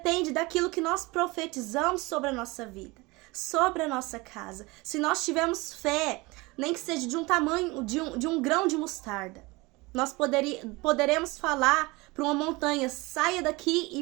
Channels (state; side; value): quieter; left; 23.7 dB